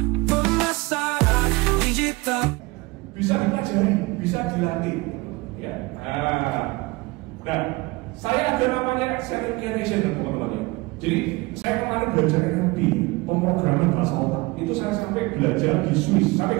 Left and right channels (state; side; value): quieter; left; 23.1 dB